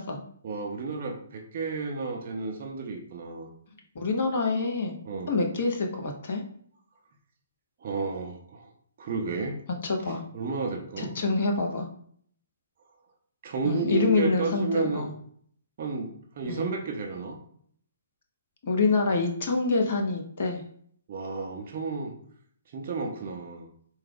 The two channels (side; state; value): both; inverted; correlation -0.58